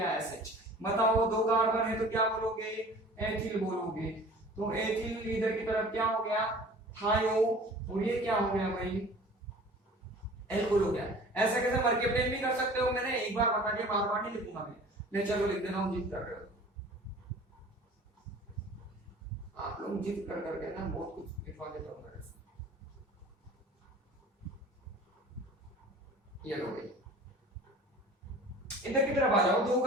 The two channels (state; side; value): normal; both; correlation 0.44